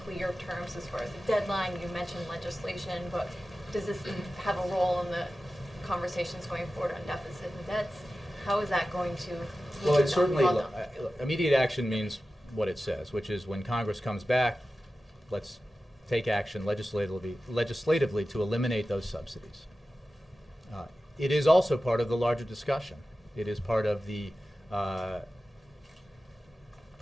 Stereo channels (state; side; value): normal; both; correlation 0.94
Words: clear terms as far as the deadline? You mentioned legislation, but does this have a role in the conversations going forward on deficit and debts? How is that going to? Well, it certainly, immediate action means what it says, which is when Congress comes back, let's take action legislatively to eliminate those subsidies. It is also part of the larger discussion. It is part of the